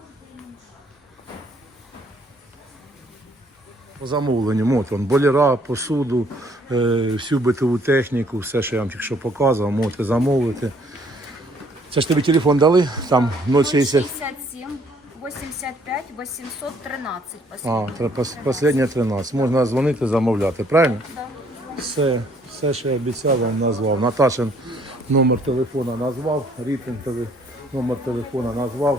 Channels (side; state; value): both; normal; correlation 0.63